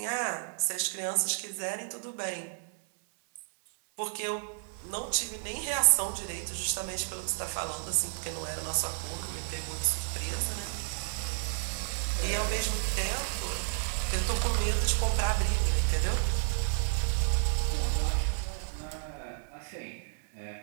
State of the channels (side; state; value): left; silent; 57 dB below the other